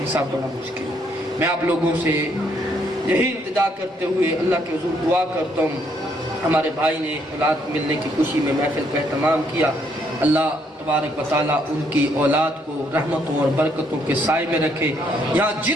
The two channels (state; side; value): normal; both; correlation 0.71